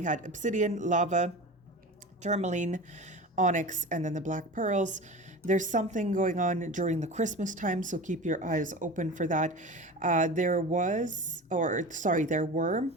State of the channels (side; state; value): both; normal; correlation 0.32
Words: had obsidian, lava, tourmaline, onyx, and then the black pearls. There's something going on during the Christmas time, so keep your eyes open for that. There were